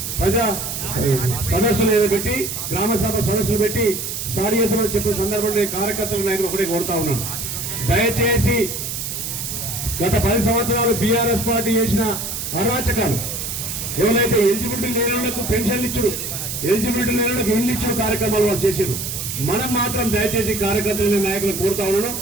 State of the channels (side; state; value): right; noise; hiss, 5 dB below the sound